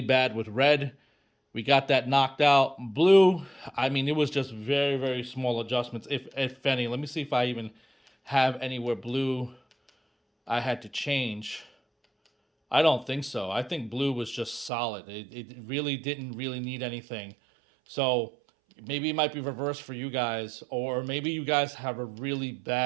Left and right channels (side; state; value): left; drops out; at 14.7 s